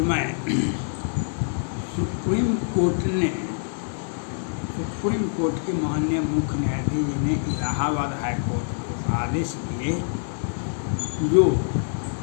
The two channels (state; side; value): silent; right; digital silence